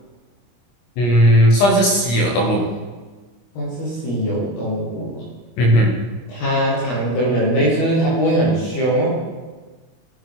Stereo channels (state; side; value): late; right; 25 ms